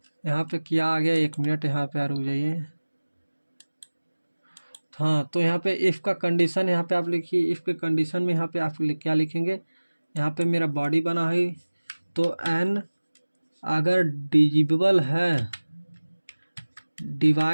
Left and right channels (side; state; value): both; inverted; correlation -1.00